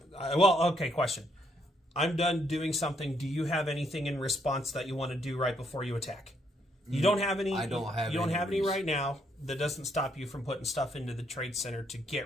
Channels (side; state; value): both; normal; correlation 0.73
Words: Okay, question. I'm done doing something. Do you have anything in response that you want to do right before you attack? You don't have any. I don't have. You don't any have any right now. That doesn't stop you from putting stuff into the trade center to